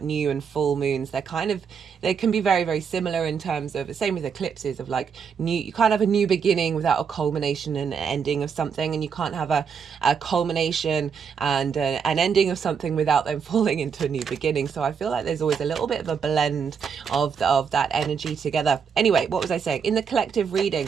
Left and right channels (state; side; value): quieter; left; 6.6 dB